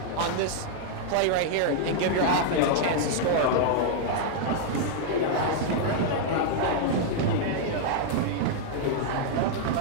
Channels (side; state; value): both; different; correlation 0.00